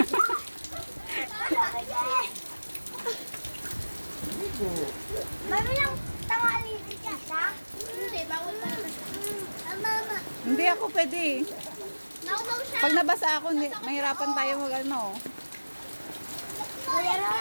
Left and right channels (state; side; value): inverted; both; correlation -1.00